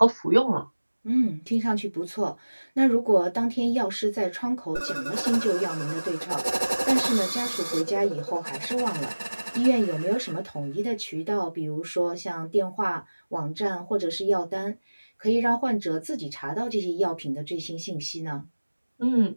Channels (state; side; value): inverted; both; correlation -1.00